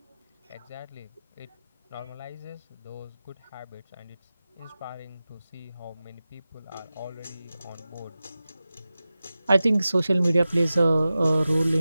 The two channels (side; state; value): both; inverted; correlation -0.95